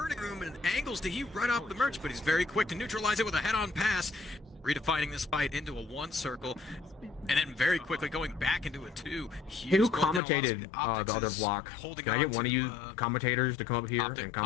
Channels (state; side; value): drops out; right; at 10.2 s